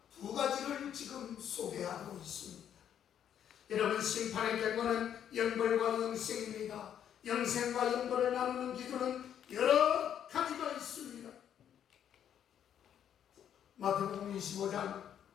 두 가지를 지금 소개하고 있습니다. 여러분 심판의 결과는 영벌과 영생입니다. 영생과 영벌을 나누는 기준은 여러 가지 25장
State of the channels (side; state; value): right; quieter; 9.5 dB